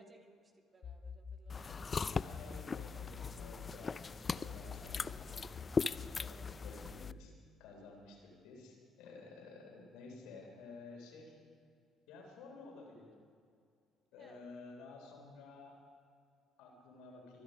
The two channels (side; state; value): right; quieter; 4.7 dB